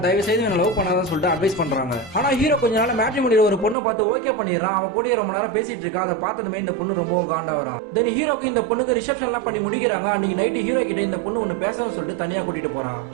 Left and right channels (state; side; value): drops out; left; at 3.8 s